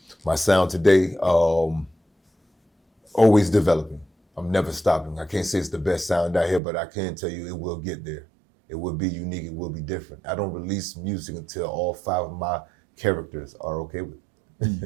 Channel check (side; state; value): left; drops out; at 6.6 s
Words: My sound today, always developing. I'm never stopping. I can't say it's the best sound out here, but I can tell you it will get there. It will be unique. It will be different. I don't release music until all 5 of my characters are okay with